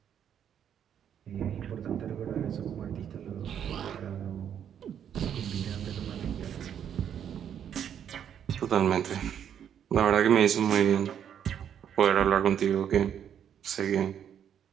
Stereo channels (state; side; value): quieter; left; 9.0 dB